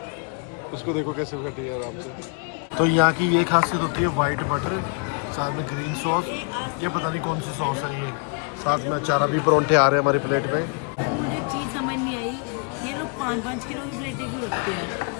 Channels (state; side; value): quieter; right; 37.4 dB